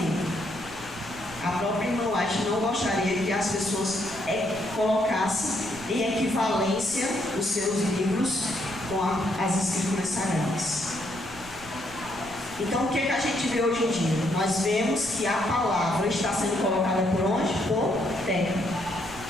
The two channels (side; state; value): right; noise; rumble, 19 dB below the sound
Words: A própria irmã White não gostaria que as pessoas colocassem em equivalência os seus livros com as escrituras sagradas. Então, o que a gente vê hoje em dia? Nós vemos que a palavra está sendo colocada por onde? Por terra.